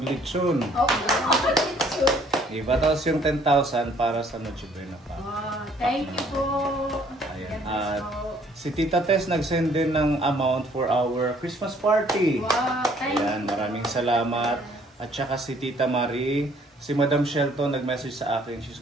Diba? Tapos yung 10,000 para sa Noche Buena pa. Thank you po. Ayan. At si Tita Tess nag-send din ng amount for our Christmas party. Wow, thank Ayan, maraming salamat. At saka si Tita Marie, si Madam Shelton nag-message sa akin, she's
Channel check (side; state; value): both; normal; correlation 0.61